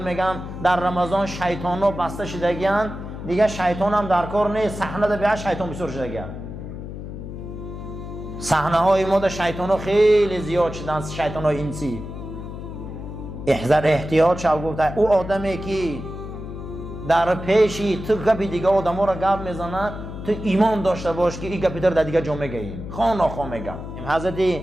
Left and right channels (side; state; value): left; noise; hum, 9 dB below the sound